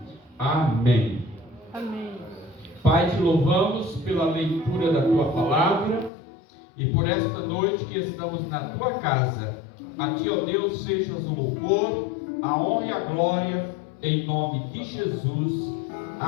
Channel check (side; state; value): right; drops out; at 6.1 s